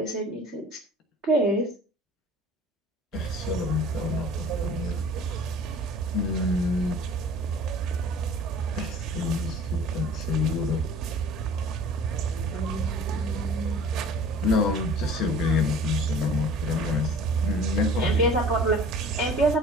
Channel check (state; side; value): normal; both; correlation 0.46